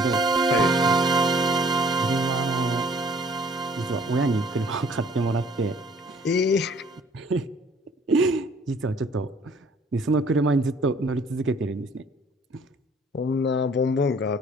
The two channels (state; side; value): normal; both; correlation 0.57